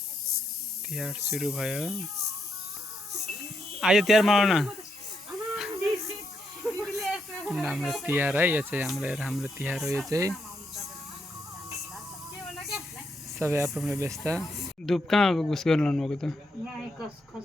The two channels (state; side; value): normal; both; correlation 0.80